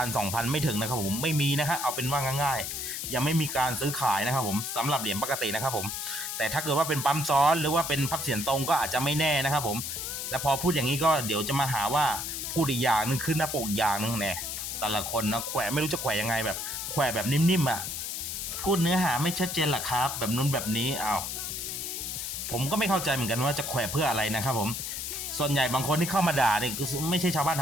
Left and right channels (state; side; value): noise; left; hiss, 4 dB below the sound